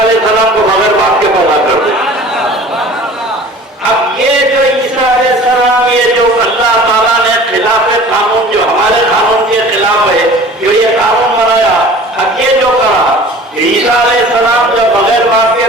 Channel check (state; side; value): normal; both; correlation 0.44